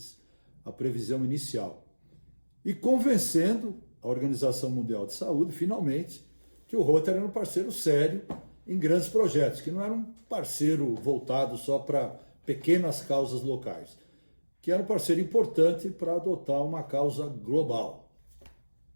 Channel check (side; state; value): both; inverted; correlation -1.00